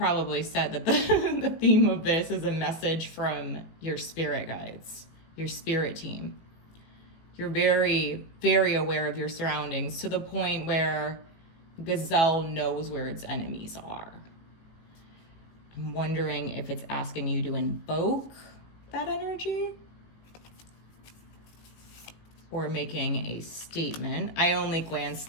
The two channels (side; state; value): right; late; 18 ms